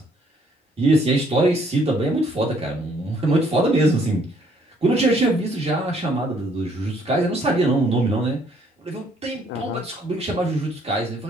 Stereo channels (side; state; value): both; normal; correlation 0.65